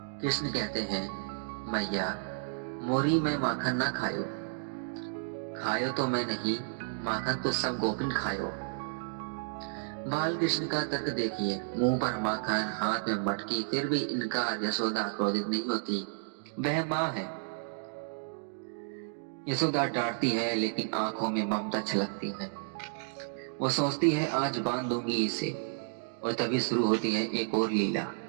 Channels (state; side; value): silent; left; digital silence